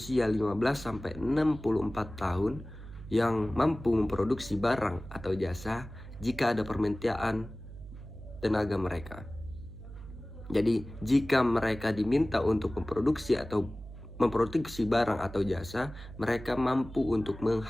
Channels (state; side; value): noise; right; hum, 14 dB below the sound